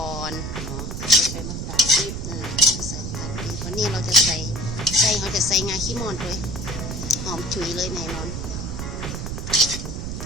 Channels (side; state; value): right; noise; rumble, 5 dB below the sound